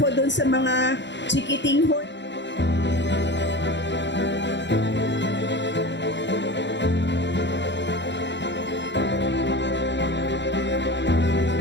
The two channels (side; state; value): right; late; 0.52 ms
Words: doon sa mga chikiting ho.